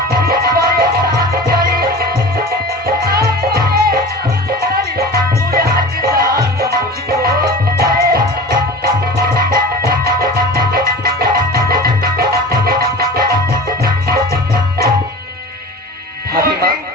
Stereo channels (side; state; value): both; normal; correlation 0.35